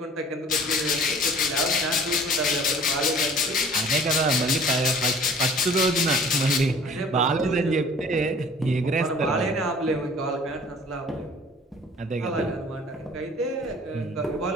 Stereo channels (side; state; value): both; normal; correlation 0.50